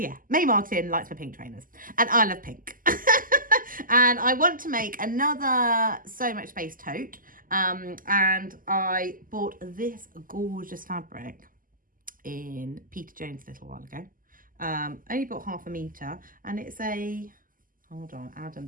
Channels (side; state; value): left; late; 0.41 ms